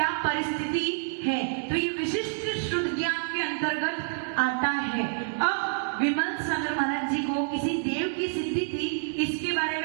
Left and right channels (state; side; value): silent; left; 59 dB below the other